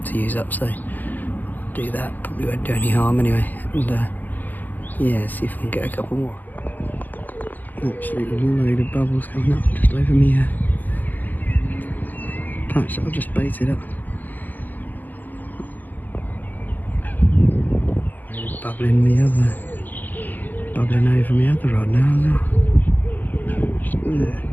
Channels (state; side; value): late; right; 0.085 ms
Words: to use up, so do that. Probably won't do any harm anyway. And yeah, see if I can get a couple more. Absolutely load of bubbles coming up just over me patch that I've just baited up. Bubbling over my other rod now as well. Just there.